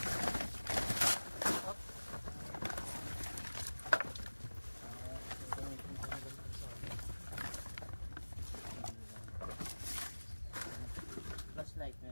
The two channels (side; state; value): both; inverted; correlation -1.00